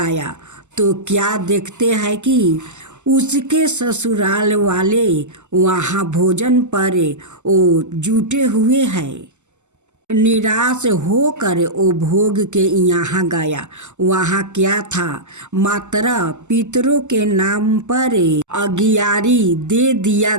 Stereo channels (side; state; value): left; late; 0.84 ms